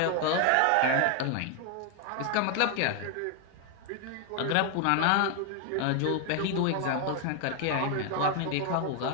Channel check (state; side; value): different; both; correlation 0.00